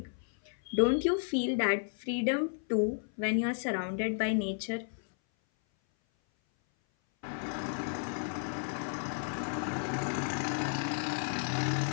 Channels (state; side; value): silent; right; 56 dB below the other